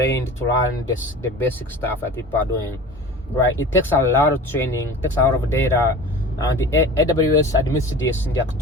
to learn the basic stuff that people are doing, right? It takes a lot of training, it takes a lot of data, and the AWS admits this in their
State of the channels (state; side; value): normal; both; correlation 0.38